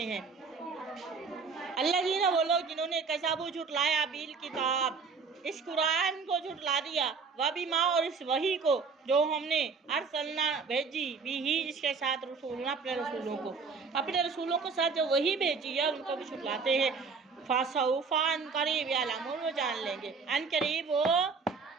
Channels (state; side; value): quieter; left; 5.0 dB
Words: हैं। अल्लज़ीना वो लोग जिन्होंने कज़बू झुटलाया बिल किताब इस कुरान को झुटला दिया वह भी माँ और इस वही को जो हमने अरसलना भेजी भी ही इसके साथ रसूलना अपने रसूलों के साथ जो वही भेजी है उनको भी झुटलाते हैं। फासौफा अन करीब यालमून वो जान लेंगे अन करीब वो